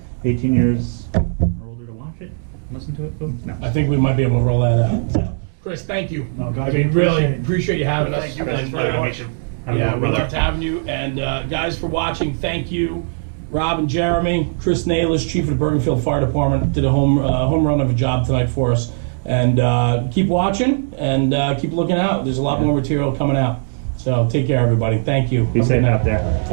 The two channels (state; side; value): silent; left; digital silence